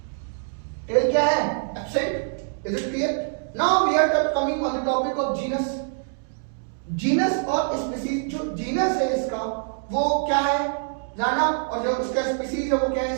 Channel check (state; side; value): silent; left; digital silence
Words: टेल क्या है, absent. Is it clear? Now we are coming on the topic of genus. Genus और स्पीसीज। जो जीनस है इसका वो क्या है, जाना, और जो उसका स्पीसीज है वो क्या